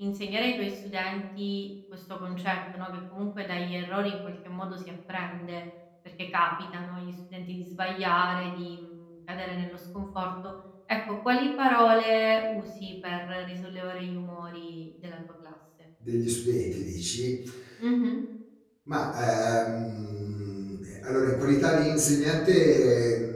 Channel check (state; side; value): identical; both; correlation 1.00